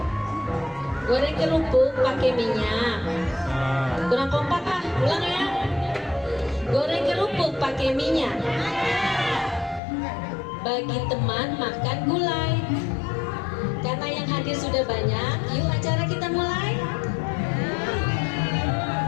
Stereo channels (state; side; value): drops out; right; at 9.8 s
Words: Goreng kerupuk pakai minyak. Kurang kompak ah, ulang ya. Goreng kerupuk pakai minyak. Bagi teman makan gulai. Karena yang hadir sudah banyak, yuk acara kita mulai.